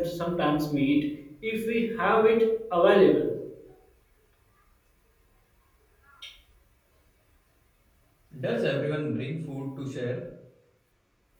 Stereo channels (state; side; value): identical; both; correlation 1.00